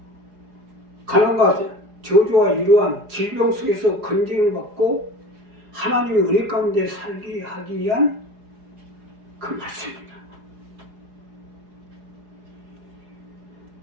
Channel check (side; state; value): left; late; 4.8 ms